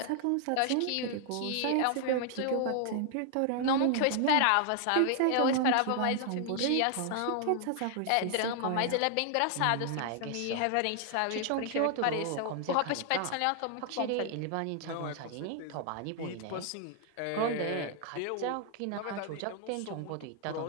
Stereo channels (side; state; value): both; different; correlation 0.00